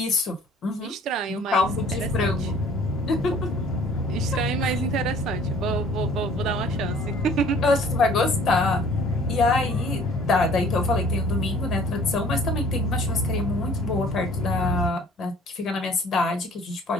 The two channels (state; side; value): normal; both; correlation 0.53